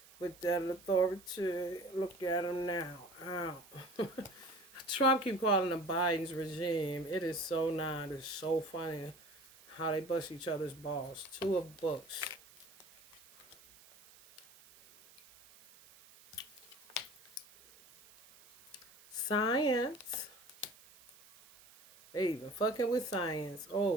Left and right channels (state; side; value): noise; right; hiss, 23 dB below the sound